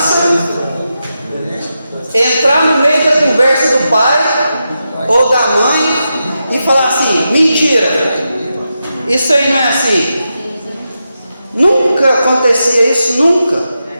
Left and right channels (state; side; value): inverted; both; correlation -0.88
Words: entrar no meio da conversa do pai ou da mãe e falar assim: mentira, isso aí não é assim. Nunca acontecia isso, nunca.